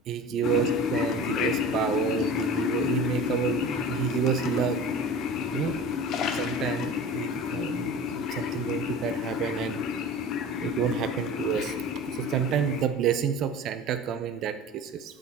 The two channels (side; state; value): both; normal; correlation 0.37